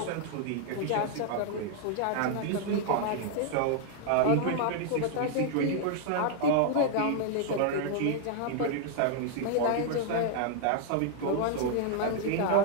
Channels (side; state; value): both; different; correlation 0.00